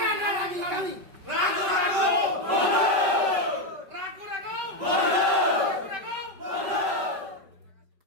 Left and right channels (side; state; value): left; late; 5.2 ms